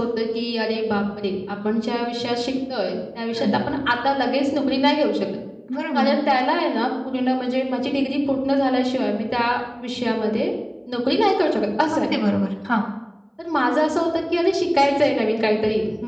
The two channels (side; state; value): both; identical; correlation 1.00